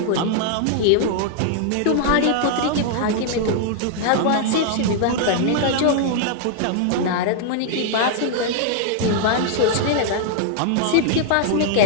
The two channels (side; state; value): both; different; correlation 0.00